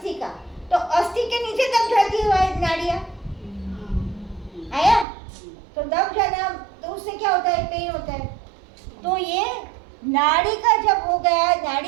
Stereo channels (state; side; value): drops out; left; at 5.1 s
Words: का। तो अस्थि के नीचे दब जाती है नाड़ियाँ, आया? तो दब जाना, तो उससे क्या होता है? पेन होता है। तो ये नाड़ी का जब हो गया,